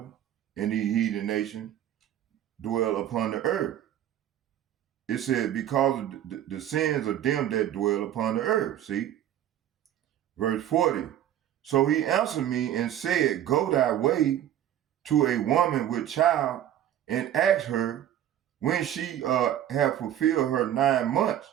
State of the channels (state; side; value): quieter; left; 11.3 dB